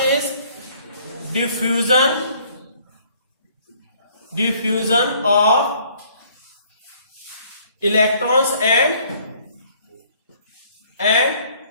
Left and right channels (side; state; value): both; inverted; correlation -0.60